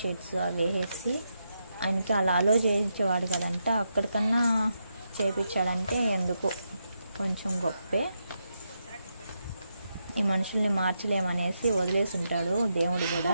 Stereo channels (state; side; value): inverted; both; correlation -0.83